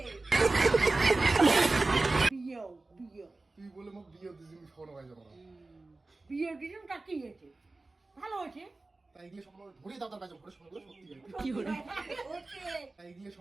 বিয়ে বিয়ে তুই বলে মোক বিয়ে দিছিস, আমি স্বপ্ন হয়ে যাবো না। বিয়ে দিলাম তা কি হয়েছে? ভালো হয়েছে। তাই এগুলো স্বপ্ন ধরে দাও তার বাইজম ঘরে স্বপ্ন সত্যি হয়। কি করে? হচ্ছে তাই এগুলো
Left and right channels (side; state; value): left; quieter; 3.3 dB